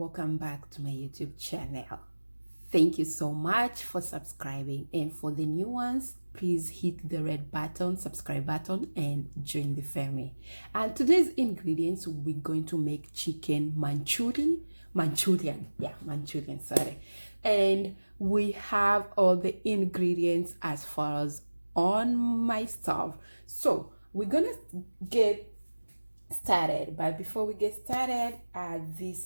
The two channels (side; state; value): both; inverted; correlation -1.00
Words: back to my YouTube channel. Thank you so much for subscribing, and for the new ones, please hit the red button, subscribe button, and join the family. And today's ingredients, we're going to make chicken Manchurian, sorry. And we have all the ingredients as far as on my stove. So we're gonna get started, but before we get started,